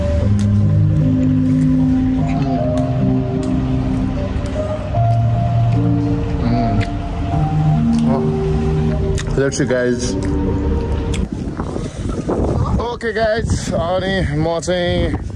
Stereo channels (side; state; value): both; identical; correlation 1.00